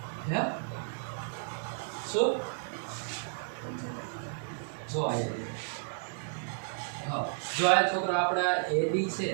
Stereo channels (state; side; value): silent; left; 56 dB below the other